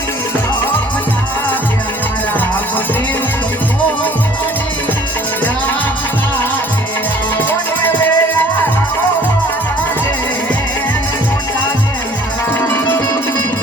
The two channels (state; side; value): normal; both; correlation 0.54